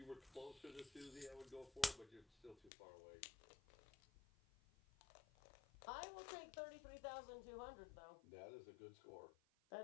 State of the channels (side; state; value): right; drops out; at 2.7 s